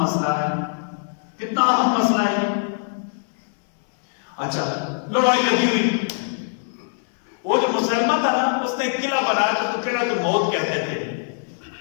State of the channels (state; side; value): silent; right; 64 dB below the other